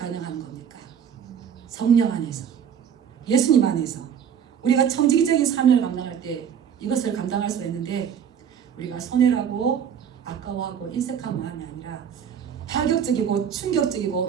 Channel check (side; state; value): left; quieter; 8.2 dB